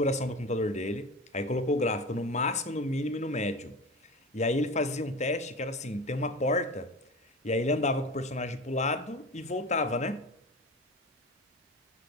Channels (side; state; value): both; normal; correlation 0.30